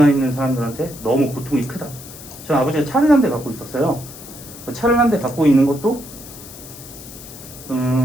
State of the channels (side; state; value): left; noise; hiss, 16 dB below the sound